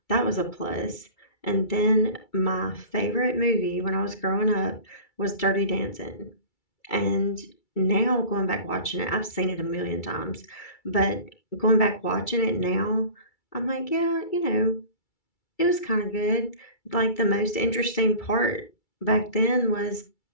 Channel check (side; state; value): right; late; 2.3 ms